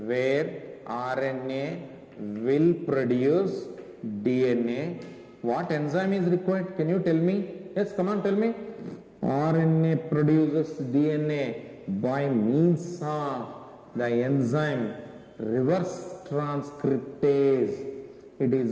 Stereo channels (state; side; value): identical; both; correlation 1.00